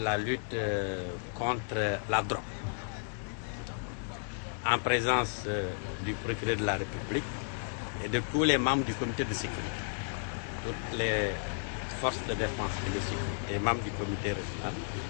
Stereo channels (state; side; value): silent; right; digital silence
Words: la lutte contre la drogue, en présence du procureur de la République et de tous les membres du comité de sécurité, toutes les forces de défense et de sécurité, les membres du comité régional